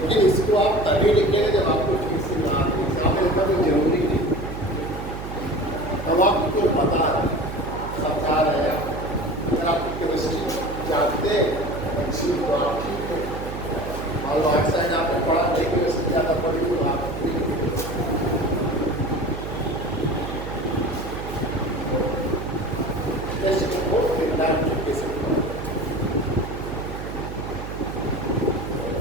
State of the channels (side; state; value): right; noise; hum, 8 dB below the sound